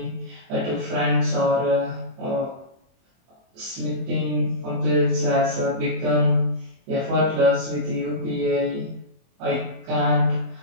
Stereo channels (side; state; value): left; late; 23 ms